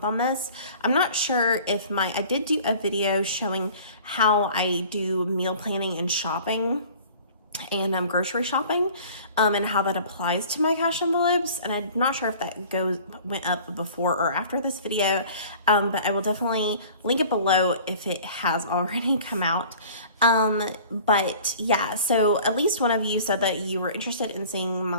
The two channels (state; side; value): inverted; both; correlation -0.47